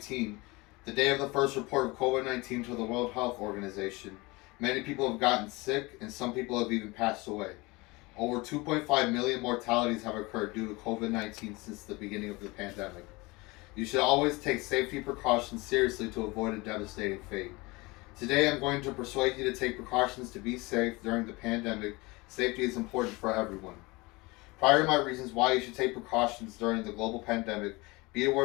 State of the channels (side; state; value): right; quieter; 23.9 dB